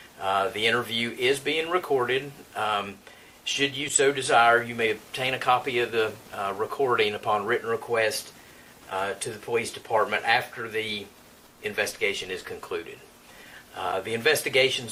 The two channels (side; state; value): both; identical; correlation 1.00